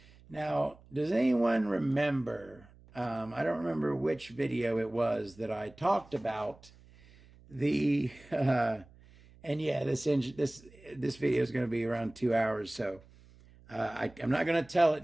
now, does anyone remember? I don't remember which video it was that I talked about the, and yeah, this video is going to be around 2 hours, so I'm not going to tell it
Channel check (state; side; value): noise; right; hum, 25 dB below the sound